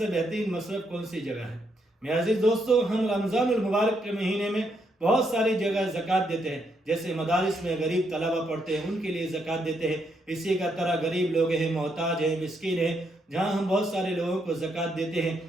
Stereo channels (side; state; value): both; normal; correlation 0.77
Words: بہترین مصرف کون سی جگہ ہے؟ میرے عزیز دوستو، ہم رمضان المبارک کے مہینے میں بہت ساری جگہ زکوٰۃ دیتے ہیں، جیسے مدارس میں غریب طلبہ پڑھتے ہیں ان کے لیے زکوٰۃ دیتے ہیں، اسی کا طرح غریب لوگ ہیں، محتاج ہیں، مسکین ہیں، جہاں ہم بہت سارے لوگوں کو زکوٰۃ دیتے ہیں۔